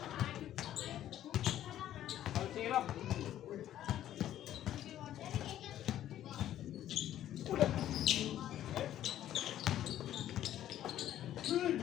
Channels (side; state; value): right; quieter; 12.0 dB